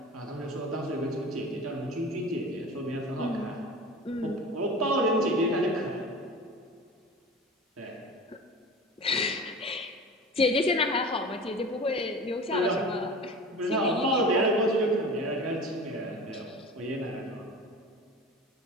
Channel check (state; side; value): normal; both; correlation 0.35